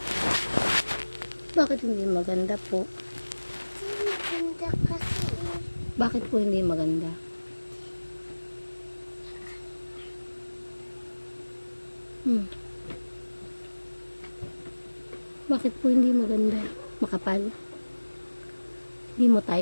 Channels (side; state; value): both; inverted; correlation -1.00